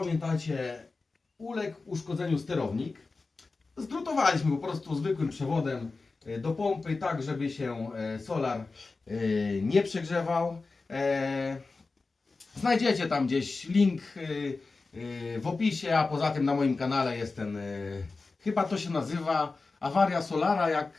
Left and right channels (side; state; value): right; quieter; 3.9 dB